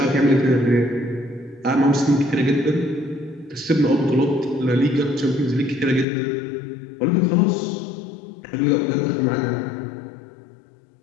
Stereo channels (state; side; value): drops out; right; at 6.1 s